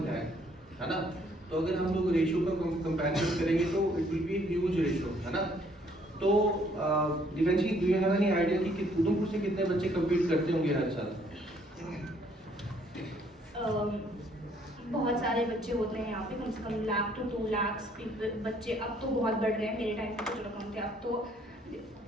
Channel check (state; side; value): normal; both; correlation 0.64